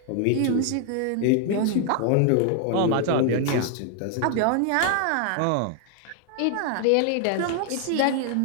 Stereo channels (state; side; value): different; both; correlation 0.00